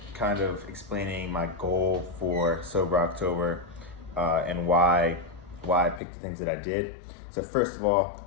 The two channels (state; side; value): drops out; right; at 6.0 s